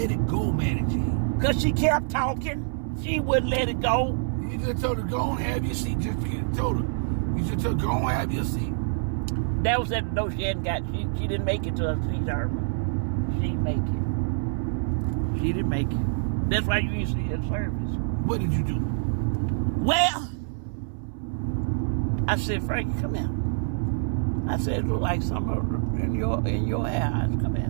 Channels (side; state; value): left; silent; 58 dB below the other